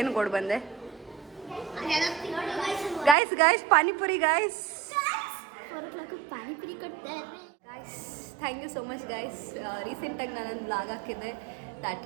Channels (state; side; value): drops out; left; at 3.2 s